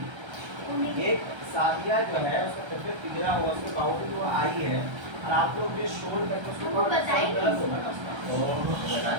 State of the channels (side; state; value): left; late; 1.3 ms